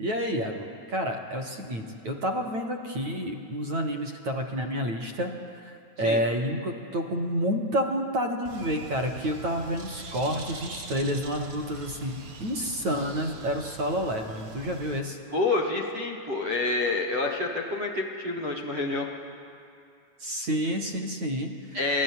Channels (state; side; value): late; left; 9.1 ms